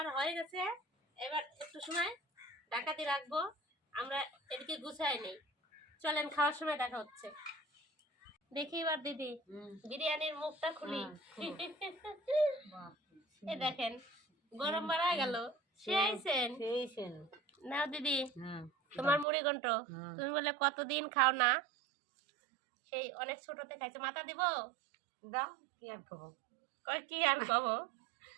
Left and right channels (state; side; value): drops out; left; at 19.2 s